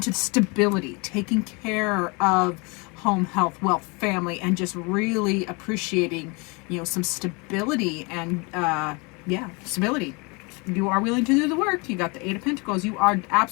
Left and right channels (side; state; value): right; quieter; 29.5 dB